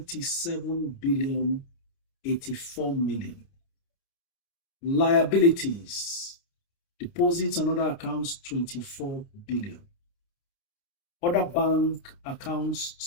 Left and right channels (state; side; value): late; right; 29 ms